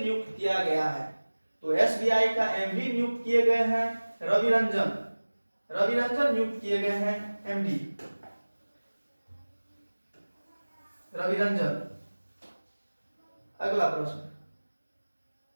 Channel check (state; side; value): inverted; both; correlation -1.00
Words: किया गया है? तो SBI का MD नियुक्त किए गए हैं रवि रंजन नियुक्त किए गए हैं MD रवि रंजन। अगला